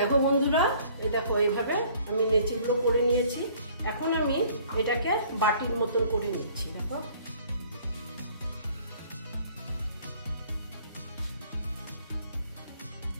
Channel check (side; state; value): both; inverted; correlation -0.56